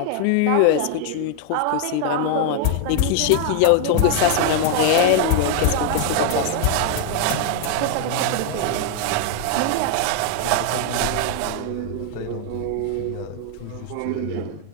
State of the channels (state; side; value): different; both; correlation 0.00